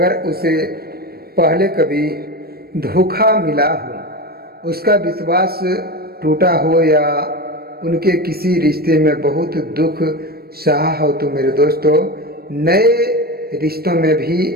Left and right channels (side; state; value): left; late; 0.45 ms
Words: उसे पहले कभी धोखा मिला हो, उसका विश्वास टूटा हो या उनके किसी रिश्ते में बहुत दुख सहा हो, तो मेरे दोस्तों नए रिश्तों में भी